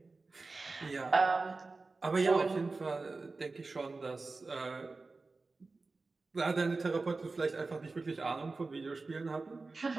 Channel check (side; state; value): left; quieter; 3.7 dB